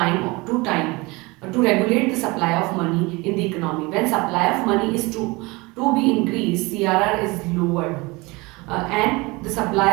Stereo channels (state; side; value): quieter; left; 24.4 dB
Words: to time to regulate the supply of money in the economy. When supply of money is to be increased, CRR is lowered, and the supply